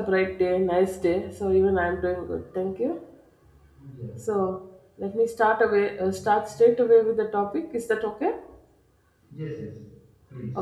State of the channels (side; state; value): both; identical; correlation 1.00